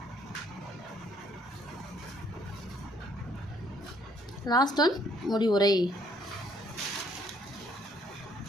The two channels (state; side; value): normal; both; correlation 0.65